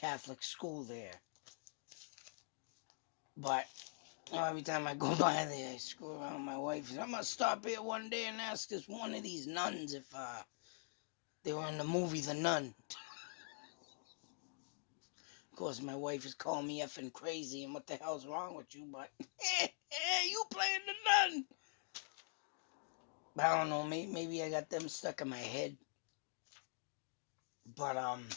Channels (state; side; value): silent; right; digital silence